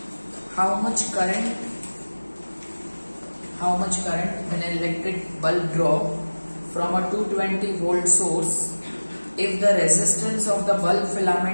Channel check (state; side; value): inverted; both; correlation -1.00